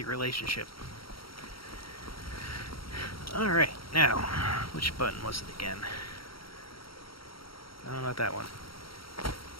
relationship. Alright, now, which button was it again? Oh, not that one.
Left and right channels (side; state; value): right; late; 0.74 ms